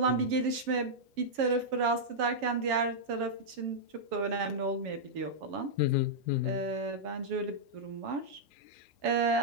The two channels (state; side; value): late; left; 7.2 ms